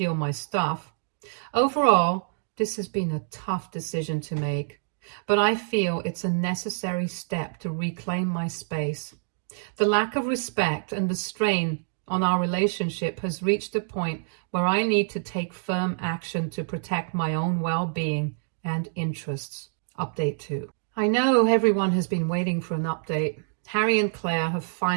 my stuff. Overall, this has been a tough decision to make, but I feel it's a necessary step to reclaim my space. The lack of respect and the strain on our relationship has reached a point where I need to take firm action to protect my own well-being and interests. Update 2. I know everyone has been waiting for an update. Harry and Claire have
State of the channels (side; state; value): left; silent; digital silence